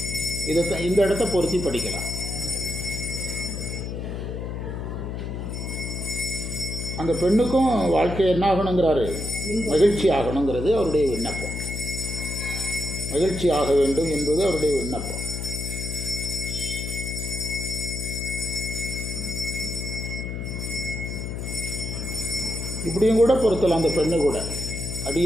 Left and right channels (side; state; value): left; noise; hum, 5 dB below the sound